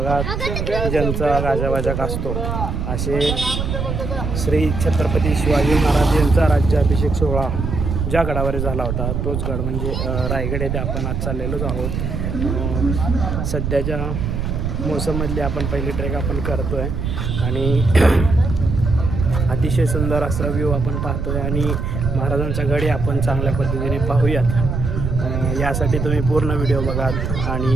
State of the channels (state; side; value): noise; right; rumble, 2 dB below the sound